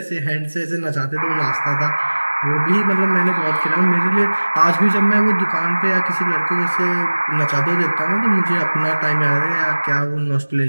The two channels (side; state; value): both; inverted; correlation -1.00